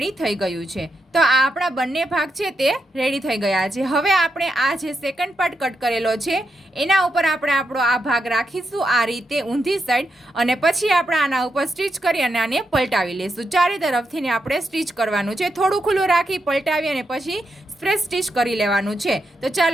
થઈ ગયું છે. તો આ આપણા બંને ભાગ છે તે રેડી થઈ ગયા છે. હવે આપણે આ જે સેકન્ડ પાર્ટ કટ કરેલો છે એના ઉપર આપણે આપણો આ ભાગ રાખીશું આ રીતે ઊંધી સાઈડ, અને પછી આપણે આના ઉપર સ્ટીચ કરી અને આને પલટાવી લઈશું. ચારે તરફથી ને આપણે સ્ટીચ કરવાનું છે. થોડું ખુલ્લું રાખી પલટાવી અને પછી સ્પ્રેસ સ્ટીચ કરી લેવાનું છે. તો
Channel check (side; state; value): both; normal; correlation 0.84